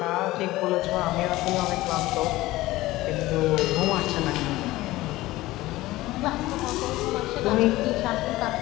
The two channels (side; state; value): right; quieter; 17.9 dB